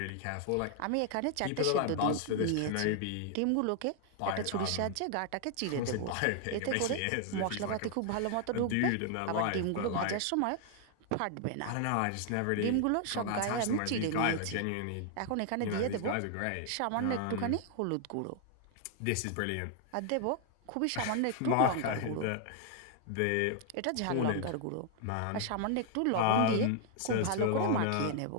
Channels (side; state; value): both; different; correlation 0.00